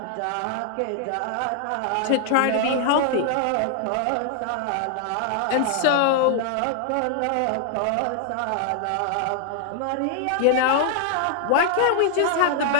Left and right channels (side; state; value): both; different; correlation 0.00